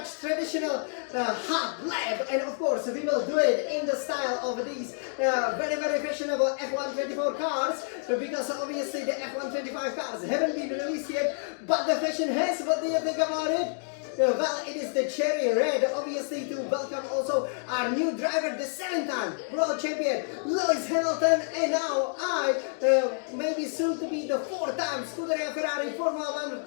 traditional hot lap. And of course, we will do it in the style of these very fashionable F124 cars, because obviously the F125 cars haven't been released yet, but the fashion has. What do you think about it? Well, it is the cherry red, obviously, to welcome also our new driver, the 7-time world champion, Lewis Hamilton, and now maybe soon to be the 4-time Scuderia Ferrari Formula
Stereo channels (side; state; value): right; silent; 59 dB below the other